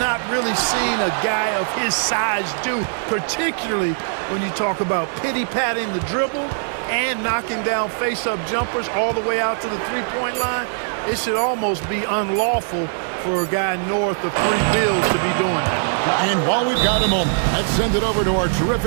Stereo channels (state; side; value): silent; left; 63 dB below the other